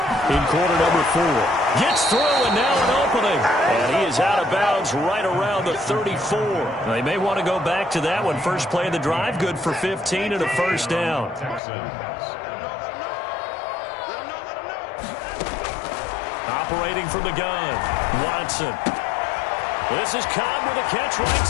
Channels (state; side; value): drops out; right; at 11.6 s